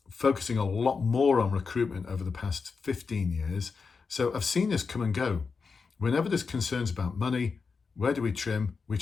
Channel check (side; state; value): right; quieter; 5.0 dB